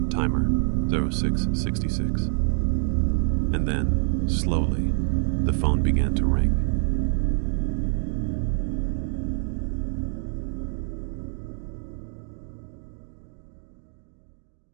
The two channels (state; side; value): silent; left; digital silence